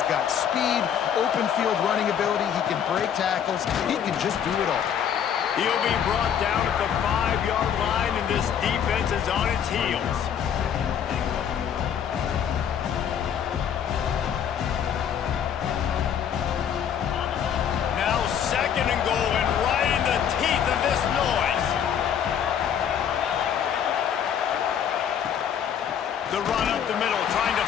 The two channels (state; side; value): quieter; right; 8.6 dB